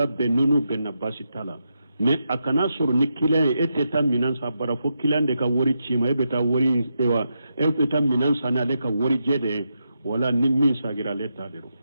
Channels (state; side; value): inverted; both; correlation -0.85